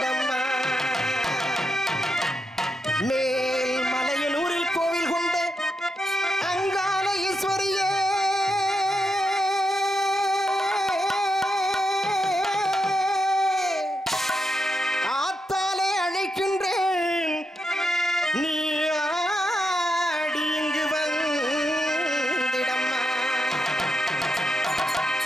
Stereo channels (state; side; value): normal; both; correlation 0.84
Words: மேல் மலையனூரில் கோவில் கொண்ட அங்காள ஈஸ்வரியே ஆத்தாலே அழைக்கின்றேன் நீ ஆடி இங்கு வந்திடம்மா